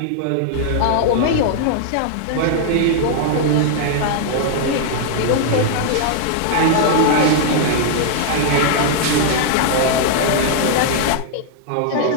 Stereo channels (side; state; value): both; different; correlation -0.01